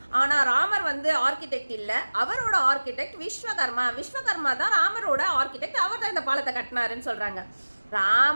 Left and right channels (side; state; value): both; inverted; correlation -1.00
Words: ஆனா ராமர் ஆர்கிடெக்ட் இல்ல, அவரோட ஆர்கிடெக்ட் விஸ்வகர்மா. விஸ்வகர்மா தான் ராமரோட ஆர்கிடெக்ட், அவர் தான் இந்த பாலத்தை கட்டினாருன்னு சொல்றாங்க.